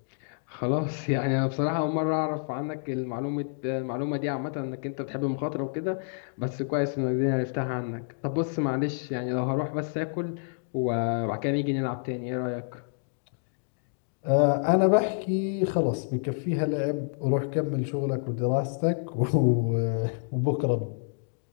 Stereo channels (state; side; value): silent; right; digital silence